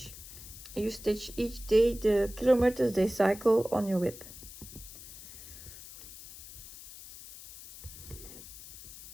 You stitch each day the kilometers they cycle on your whip.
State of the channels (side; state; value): left; noise; hiss, 15 dB below the sound